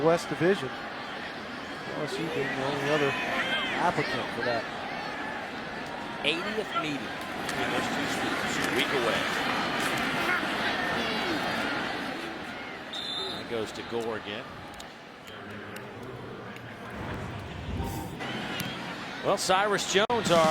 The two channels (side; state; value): both; identical; correlation 1.00